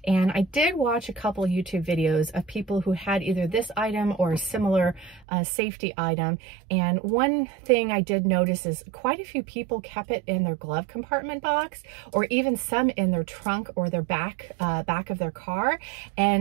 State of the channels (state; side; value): drops out; left; at 5.2 s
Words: And I did watch a couple YouTube videos of people who had either this item or a similar safety item. And one thing I did notice is quite a few people kept it in their glove compartment box, or even some in their trunk or their back of their car.